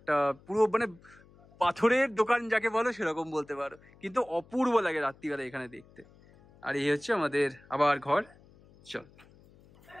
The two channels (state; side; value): noise; left; hum, 26 dB below the sound